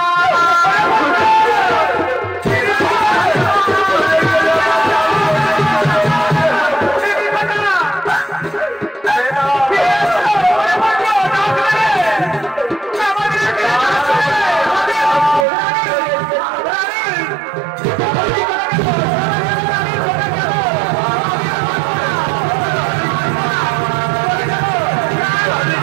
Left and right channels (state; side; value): drops out; left; at 15.5 s